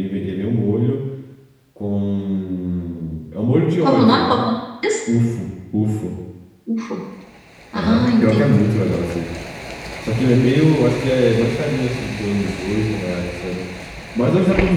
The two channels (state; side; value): identical; both; correlation 1.00